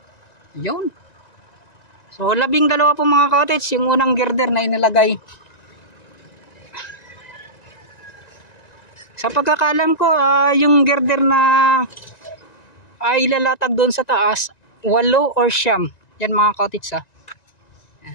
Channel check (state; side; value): late; right; 1.9 ms